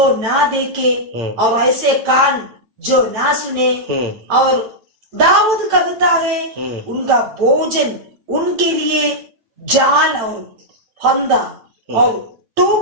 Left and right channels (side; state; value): left; late; 9.0 ms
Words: ना देखे और ऐसे कान जो ना सुने। और दाऊद कहता है, उनका भोजन उनके लिए जाल और फंदा और